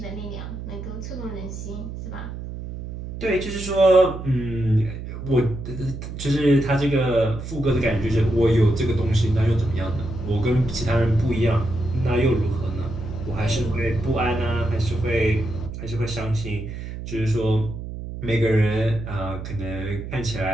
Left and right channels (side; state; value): right; noise; hum, 8 dB below the sound